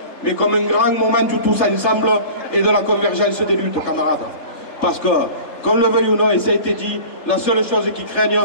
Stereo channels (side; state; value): right; late; 3.3 ms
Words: mais comme un grand moment du tous ensemble et de la convergence des luttes, camarades. Parce que, qu'on le veuille ou non, et ça a été dit, la seule chose qui craignent,